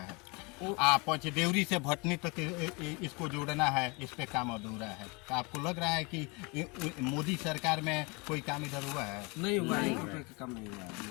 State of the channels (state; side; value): quieter; right; 28.8 dB